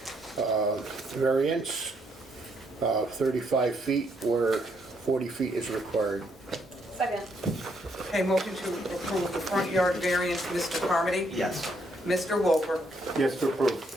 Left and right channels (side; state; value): both; normal; correlation 0.73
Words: variance, 35 feet where 40 feet is required. Second. Okay, motion to approve the front yard variance, Mr. Carmody. Yes. Mr. Wolfer. Yes, to approve.